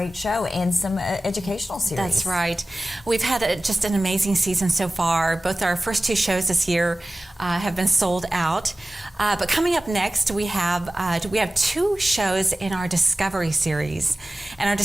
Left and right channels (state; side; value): normal; both; correlation 0.96